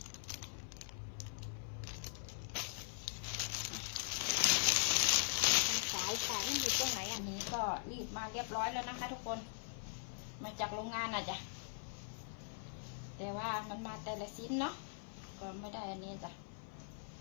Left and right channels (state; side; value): silent; right; 50 dB below the other